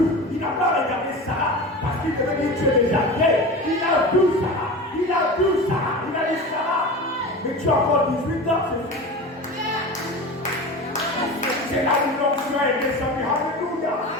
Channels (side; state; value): both; normal; correlation 0.30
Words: il n'a pas regardé Sarah parce qu'il devait dire tu es déjà vieille. Il a vu Sarah, il a dit Sarah, mais tu as encore 18 ans, c'est fou. C'est là où l'onction est descendue, alléluia.